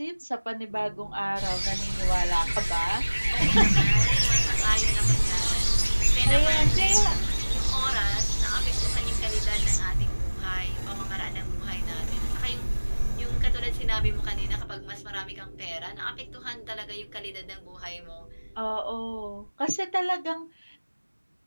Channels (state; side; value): inverted; both; correlation -1.00